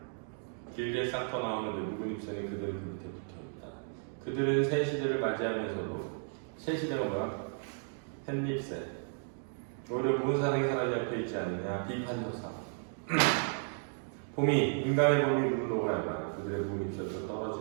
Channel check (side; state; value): left; silent; 55 dB below the other